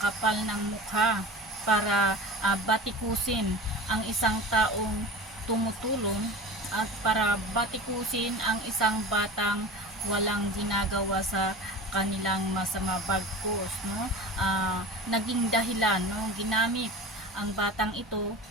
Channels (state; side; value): normal; both; correlation 0.33